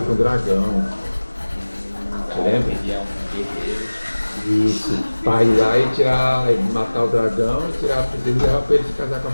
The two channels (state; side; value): inverted; both; correlation -1.00